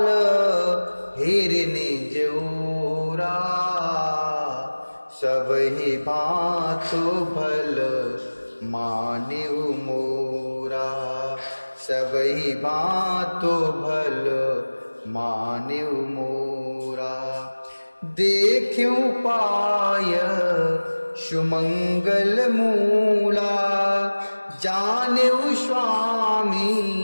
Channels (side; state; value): both; inverted; correlation -1.00